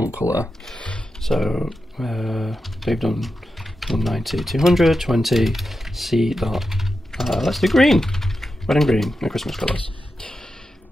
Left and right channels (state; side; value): normal; both; correlation 0.90